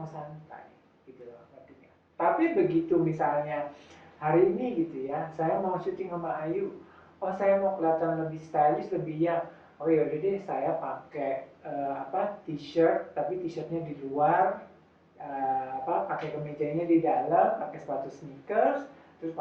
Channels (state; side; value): identical; both; correlation 1.00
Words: santai, gitu loh artinya. Tapi begitu misalnya hari ini gitu ya, saya mau syuting sama Ayu, oh saya mau kelihatan lebih stylish, lebih yang, oh yaudah deh saya pakai t-shirt, tapi t-shirtnya di luar, pakai kemejanya di dalam, pakai sepatu sneakers, terus